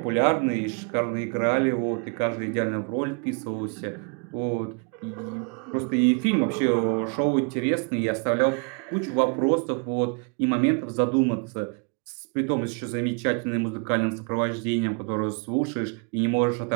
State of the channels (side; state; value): left; quieter; 37.6 dB